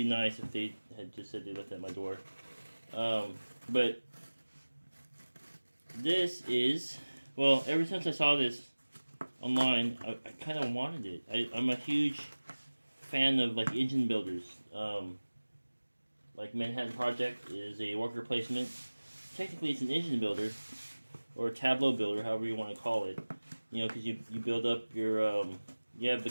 nice if they had just said they left it at my door. But this is, well, ever since I saw this online, I kind of wanted it. I'm a huge fan of like engine builders. Like Manhattan Project is a worker placement. Technically, it's an engine builder or a tableau builder, however you want to call it. You know, because you build up your you have the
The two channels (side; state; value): both; inverted; correlation -1.00